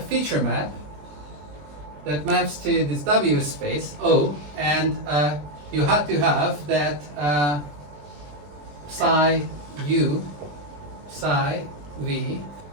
map that maps to this W space, O, and you have to have that psi U, psi V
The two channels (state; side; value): late; left; 20 ms